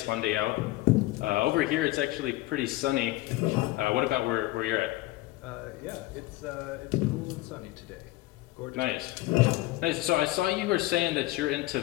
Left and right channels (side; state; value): right; quieter; 18.2 dB